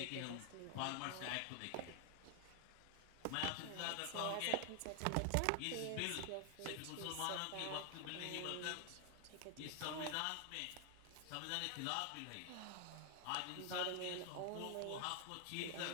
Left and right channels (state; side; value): different; both; correlation 0.00